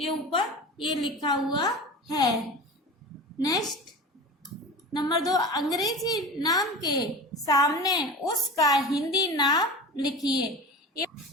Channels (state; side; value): normal; both; correlation 0.32